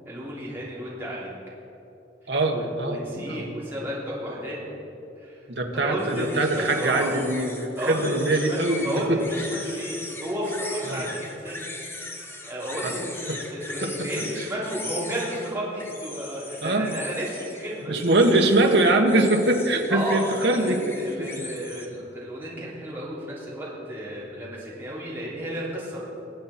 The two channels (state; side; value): normal; both; correlation 0.33